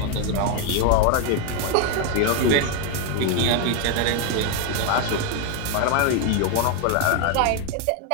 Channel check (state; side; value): different; both; correlation 0.01